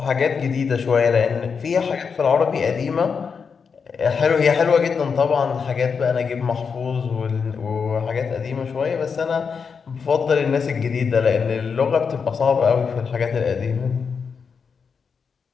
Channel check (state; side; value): quieter; right; 5.9 dB